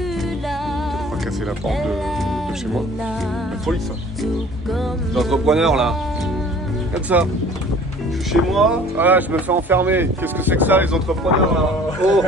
là. On va casser la porte de chez moi. La folie ça. Tout comme Les entrepreneurs là. Regarde ça. Je suis chez moi, voilà, je me fais enfermer. Qu'est-ce que c'est que ça les entrepreneurs là? Oh,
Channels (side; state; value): both; normal; correlation 0.49